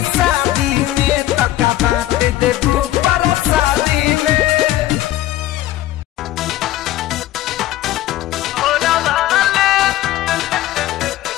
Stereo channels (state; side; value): quieter; right; 14.7 dB